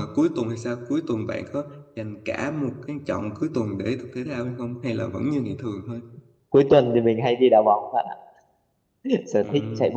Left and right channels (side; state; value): both; identical; correlation 1.00